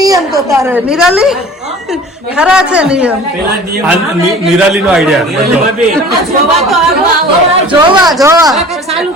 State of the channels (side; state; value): both; normal; correlation 0.44